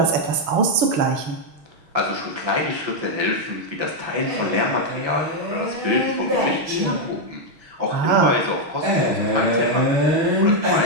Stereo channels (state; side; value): late; left; 6.3 ms